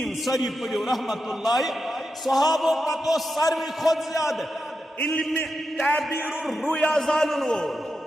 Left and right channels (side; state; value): both; normal; correlation 0.88